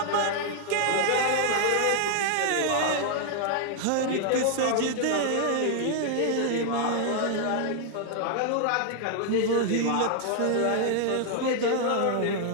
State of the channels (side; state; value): both; different; correlation 0.00